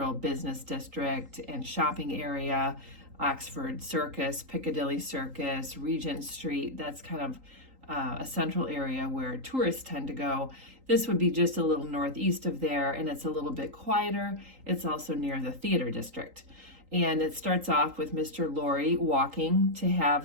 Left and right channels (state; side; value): late; left; 3.8 ms